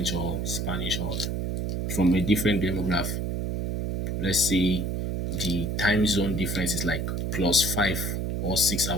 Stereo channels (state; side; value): noise; right; hum, 1 dB below the sound